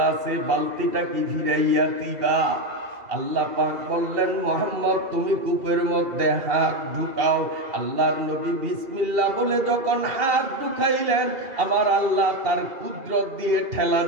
আছে, বালতিটা কি ফিরাইয়া দিবা? আল্লাহ পাক বললেন, মুহাম্মদ, তুমি কূপের মধ্যে হাত ঢুকাও। আল্লাহর নবী বিসমিল্লাহ বলে যখন হাত ঢুকাইলেন, আমার আল্লাহ তার কুদরত দিয়ে ঠেলা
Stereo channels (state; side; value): late; left; 2.7 ms